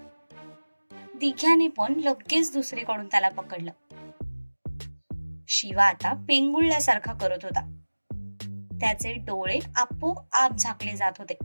दिघ्याने पण लगेच दुसरीकडून त्याला पकडलं. शिवा आता पेंगुळल्यासारखा करत होता. त्याचे डोळे आपोआप झाकले जात होते.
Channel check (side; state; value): both; inverted; correlation -1.00